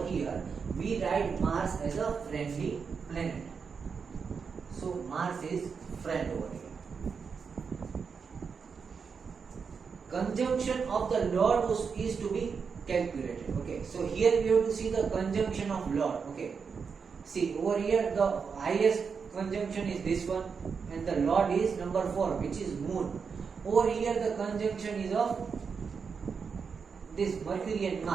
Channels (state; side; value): quieter; left; 5.8 dB